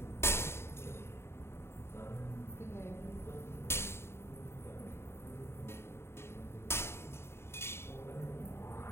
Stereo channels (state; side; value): late; right; 0.12 ms